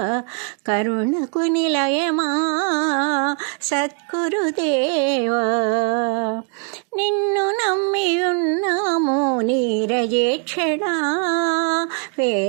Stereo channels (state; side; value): quieter; left; 39.1 dB